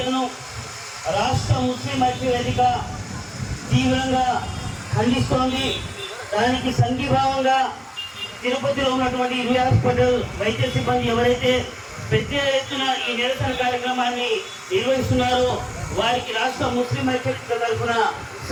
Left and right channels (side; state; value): both; identical; correlation 1.00